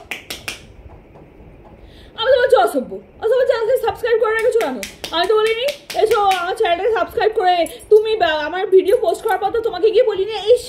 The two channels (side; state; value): both; identical; correlation 1.00